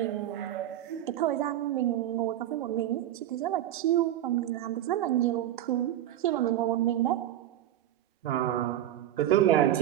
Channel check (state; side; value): quieter; left; 12.5 dB